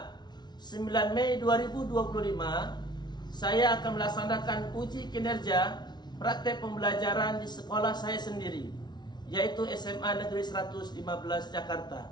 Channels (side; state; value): right; late; 0.20 ms